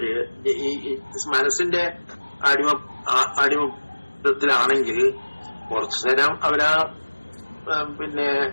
ഈ മനസ്സിന്റെ അടിമത്തിലാണെങ്കിൽ കുറച്ചു നേരം അവരാ പിന്നെ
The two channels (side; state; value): both; inverted; correlation -1.00